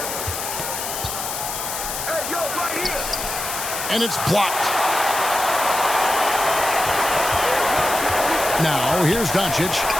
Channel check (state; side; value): noise; left; hiss, 5 dB below the sound